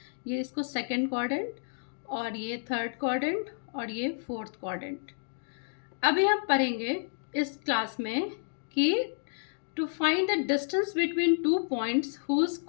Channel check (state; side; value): silent; right; digital silence